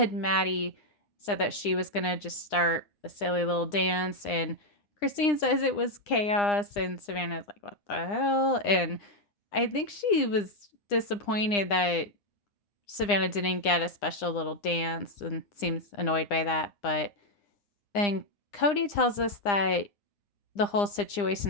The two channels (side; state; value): right; late; 9.8 ms